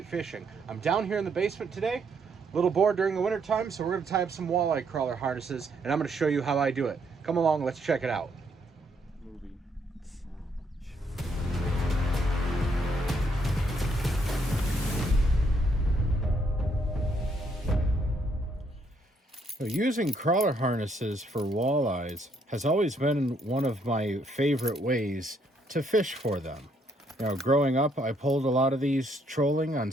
Fishing. I'm down here in the basement today, a little bored during the winter time, so we're going to tie up some walleye crawler harnesses, and I'm going to show you how I do it. Come along, let's check it out. Using crawler harnesses for walleyes has always been one of my favorite ways to fish for them. Growing up, I pulled a lot of these trolling on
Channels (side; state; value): both; normal; correlation 0.71